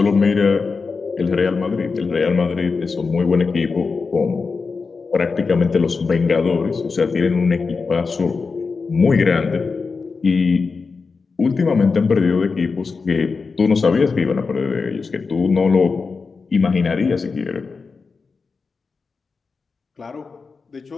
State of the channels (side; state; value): right; quieter; 4.7 dB